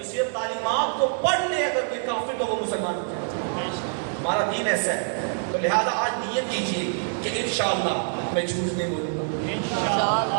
صرف تعلیمات کو پڑھ لے اگر کوئی کافر تو وہ مسلمان ہو جائے۔ ہمارا دین ایسا ہے، تو لہذا آج نیت کیجیے کہ انشاءاللہ میں جھوٹ نہیں بولوں گا،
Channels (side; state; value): left; silent; digital silence